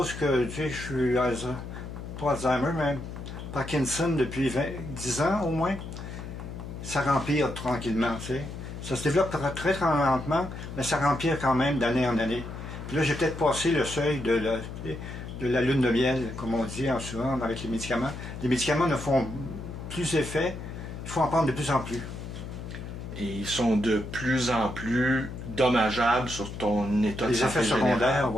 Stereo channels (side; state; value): left; noise; hum, 9 dB below the sound